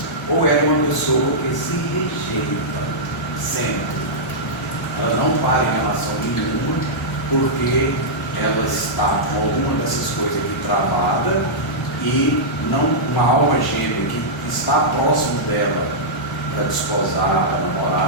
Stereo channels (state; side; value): normal; both; correlation -0.11